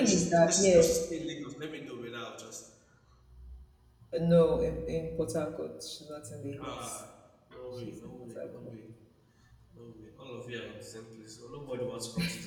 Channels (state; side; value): identical; both; correlation 1.00